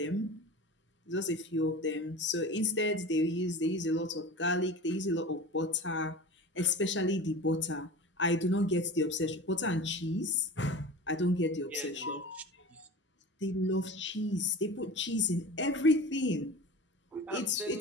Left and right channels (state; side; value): normal; both; correlation 0.34